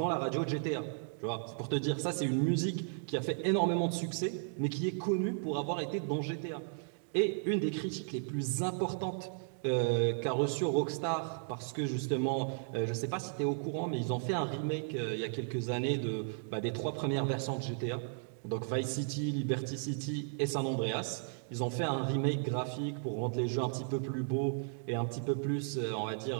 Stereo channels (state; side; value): silent; left; digital silence